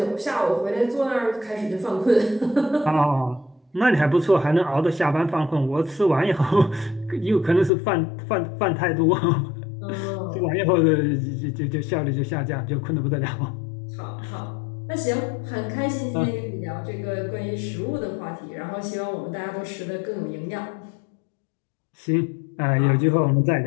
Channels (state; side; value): drops out; right; at 7.7 s